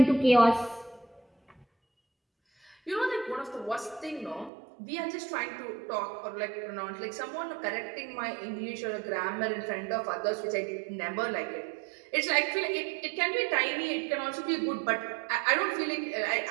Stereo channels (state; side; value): drops out; left; at 4.5 s